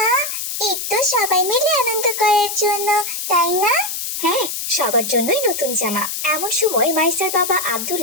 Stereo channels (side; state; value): left; noise; hiss, 4 dB below the sound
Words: ঈদ তো সবাই মিলে আনন্দ করার জন্য, তাই না? হ্যাঁ, সবার জন্যই নতুন জামা। এমন সময় মাইসার বাবা